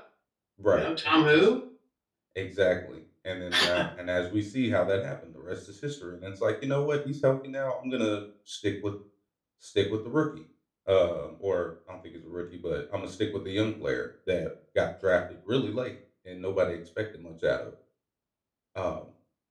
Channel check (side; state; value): both; identical; correlation 1.00